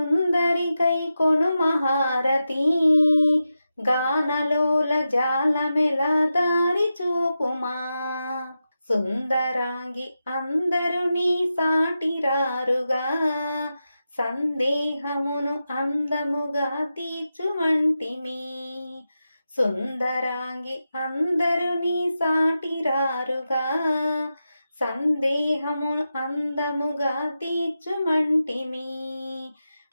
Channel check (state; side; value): inverted; both; correlation -0.90